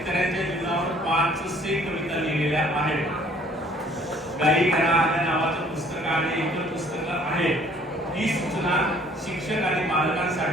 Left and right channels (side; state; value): both; normal; correlation 0.58